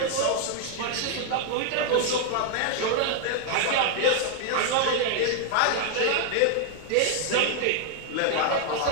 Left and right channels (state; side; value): different; both; correlation 0.00